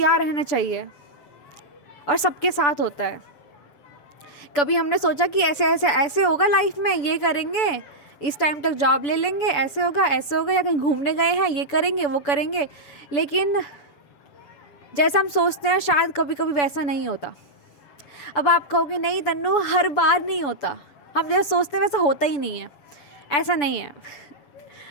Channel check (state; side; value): late; right; 7.0 ms